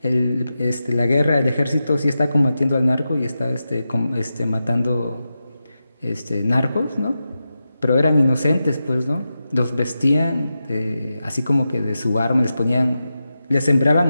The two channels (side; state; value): both; inverted; correlation -0.91